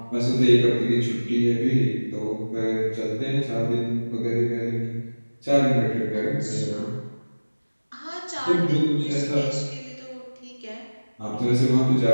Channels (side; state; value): both; inverted; correlation -1.00